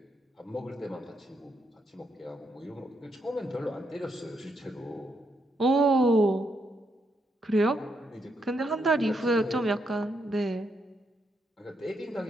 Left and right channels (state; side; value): normal; both; correlation 0.78